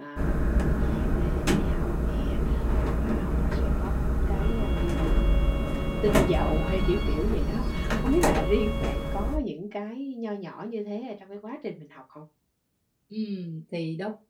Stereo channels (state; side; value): identical; both; correlation 1.00